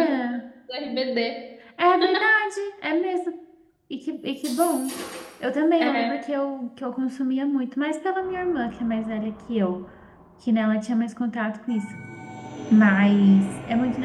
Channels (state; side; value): identical; both; correlation 1.00